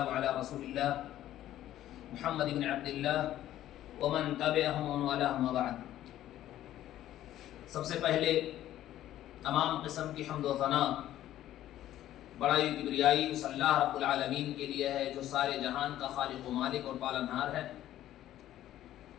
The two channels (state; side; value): quieter; right; 13.0 dB